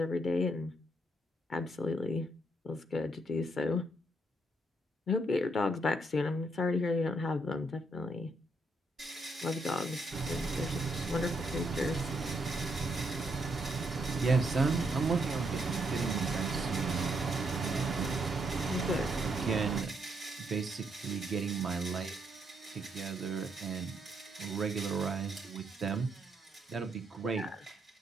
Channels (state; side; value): normal; both; correlation 0.76